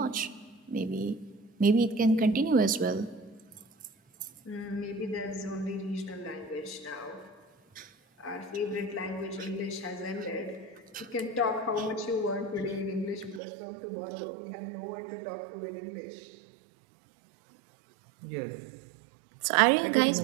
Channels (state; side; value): drops out; left; at 13.4 s